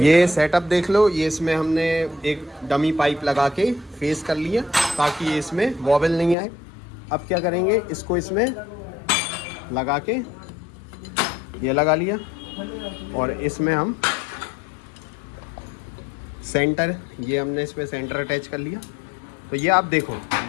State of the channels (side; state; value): right; drops out; at 6.4 s